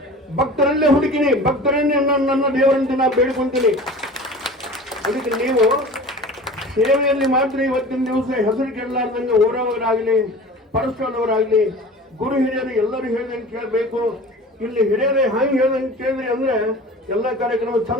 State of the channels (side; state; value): both; normal; correlation 0.39